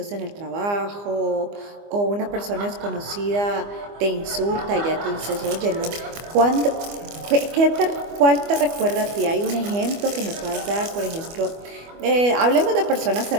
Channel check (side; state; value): left; late; 25 ms